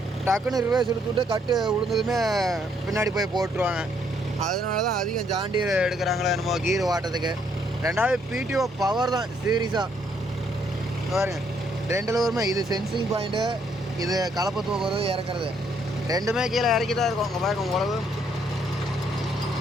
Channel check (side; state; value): both; normal; correlation 0.70